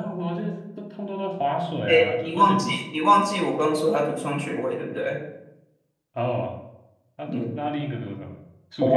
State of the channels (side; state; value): both; identical; correlation 1.00